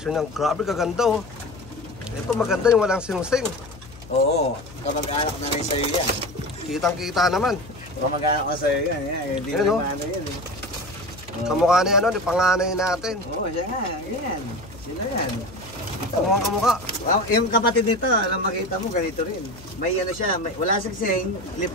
ng grabe, kaganda oh. Ito maganda yung walang singsing. Oo, kamag-anak na rin sa'yo yan. Kitang-kita naman. Kamag-anak na sa'yo yan. Hindi Ayun, na oh. ano yan. Kamukha ni ano, ni panganay natin. Oo, siya nga. Yan. Sino yan? Kamukha. Wow, yung kapatid nito, alam makita mo, ganito rin. May ano siya, wala sigsing, lip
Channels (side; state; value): left; noise; hum, 19 dB below the sound